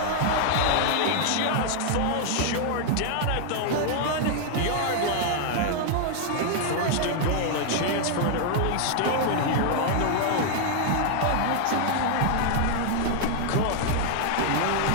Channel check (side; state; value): both; different; correlation 0.00